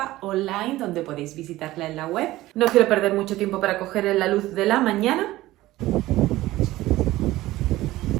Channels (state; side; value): quieter; left; 16.9 dB